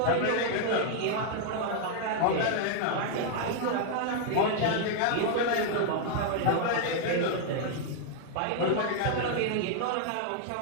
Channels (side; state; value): both; different; correlation 0.00